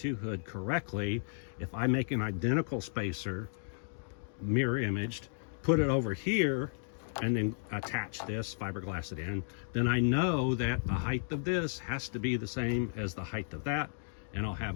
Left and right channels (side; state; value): right; silent; digital silence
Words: hood correctly, if I make an identical spacer, mirror imaged, put it over here, and then attach this, fiberglass it in, then I know that the height of this has to be the same as the height of that, and I'll